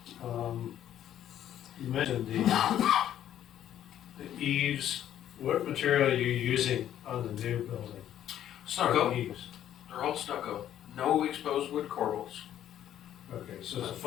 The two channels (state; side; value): quieter; right; 11.2 dB